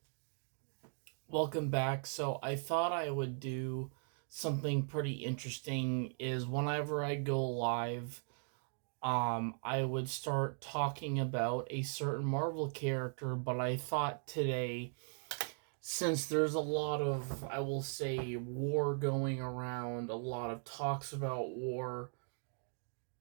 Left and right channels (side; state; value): left; silent; 52 dB below the other